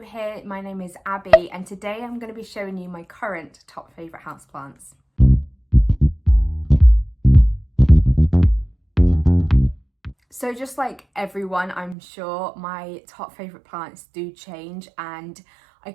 my name is Abby and today I'm going to be showing you my current top favourite houseplants. So just like everyone, I'm sure my top favourite plants do change, and I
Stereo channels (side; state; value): left; drops out; at 12.0 s